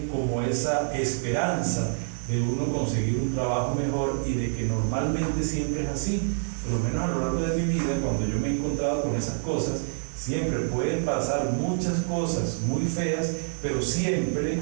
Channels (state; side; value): silent; left; digital silence